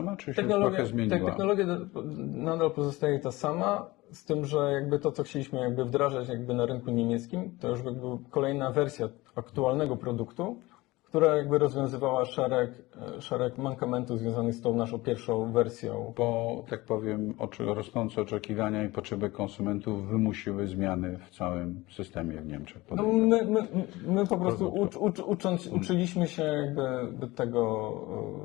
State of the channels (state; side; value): quieter; right; 20.4 dB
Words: czy się trochę zmieniła? Technologia nadal pozostaje ta sama, z tym, że jakby to, co chcieliśmy jakby wdrażać jakby na rynku niemieckim, to już jakby kolejna wersja aktualnego produktu, która jakby rozwiązywała szereg mankamentów związanych z tą naszą pierwszą wersją. Bo, tak powiem, rosnące oczekiwania i potrzeby konsumentów wymusiły zmiany w całym systemie w Niemczech. No my po prostu uczyliśmy się jakby